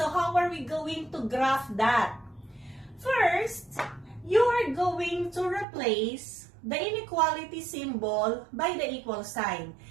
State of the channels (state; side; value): drops out; left; at 5.7 s